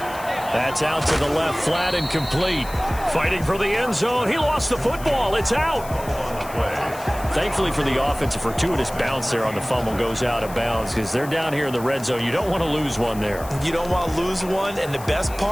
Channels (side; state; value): left; noise; hiss, 17 dB below the sound